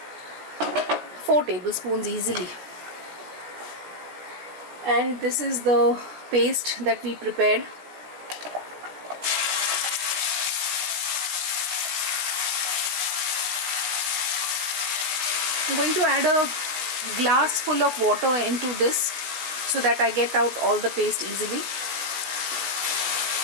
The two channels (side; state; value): left; late; 16 ms